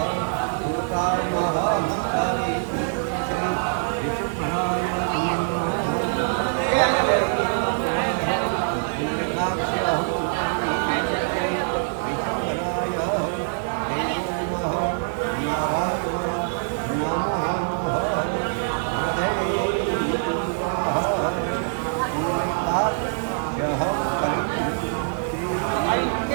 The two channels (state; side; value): silent; left; digital silence